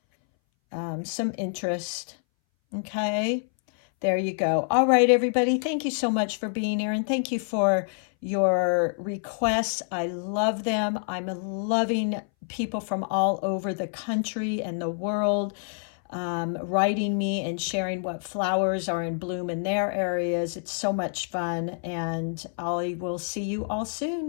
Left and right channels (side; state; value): right; silent; 60 dB below the other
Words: some interest. Okay, there you go. All right, everybody, thank you so much for being here, and thank you for your requests. I love them. I'm loving people from all over the country and the world writing me and sharing what flowers are in bloom in their areas. It's so much fun, and I will see you all